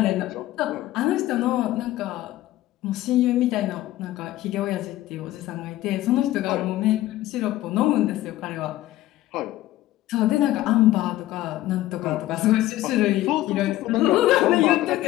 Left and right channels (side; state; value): right; quieter; 15.4 dB